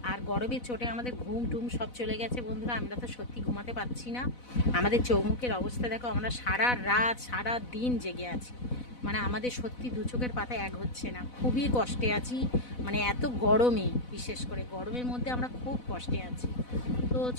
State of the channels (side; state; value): right; late; 4.0 ms